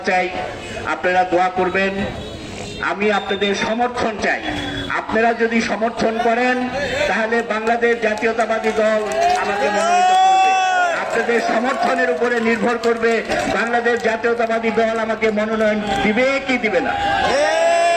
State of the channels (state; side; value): identical; both; correlation 1.00